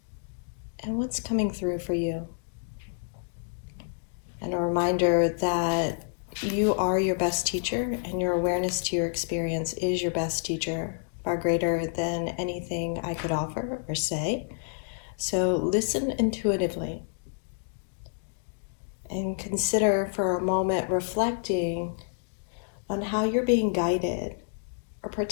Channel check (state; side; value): silent; right; digital silence